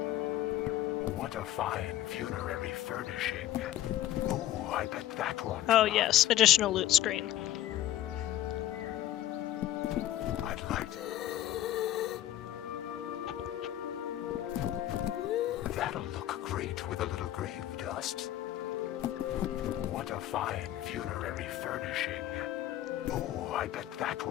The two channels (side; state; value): right; quieter; 13.3 dB